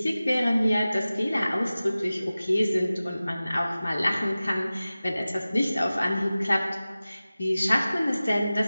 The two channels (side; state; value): both; inverted; correlation -0.96